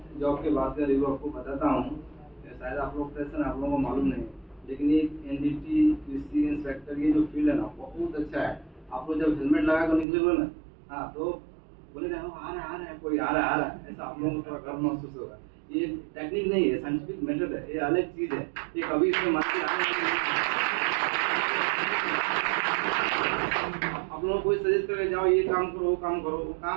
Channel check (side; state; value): left; drops out; at 10.1 s